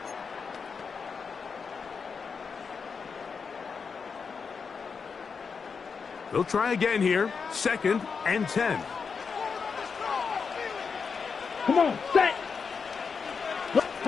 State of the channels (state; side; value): quieter; right; 5.6 dB